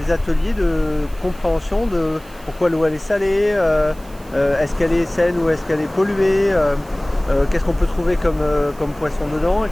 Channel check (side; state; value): right; noise; hiss, 25 dB below the sound